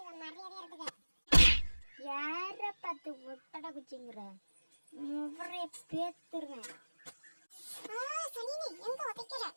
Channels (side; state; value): both; inverted; correlation -1.00